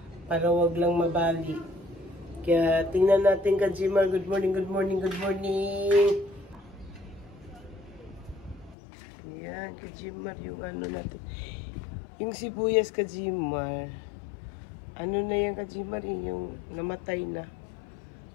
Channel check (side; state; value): right; drops out; at 8.8 s